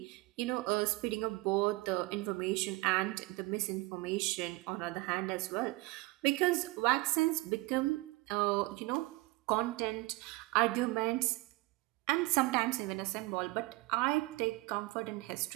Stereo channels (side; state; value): left; quieter; 22.0 dB